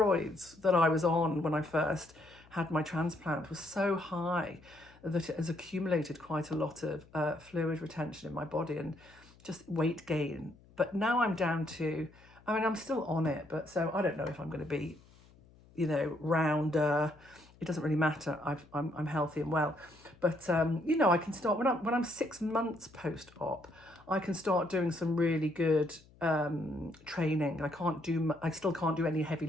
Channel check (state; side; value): noise; left; hum, 26 dB below the sound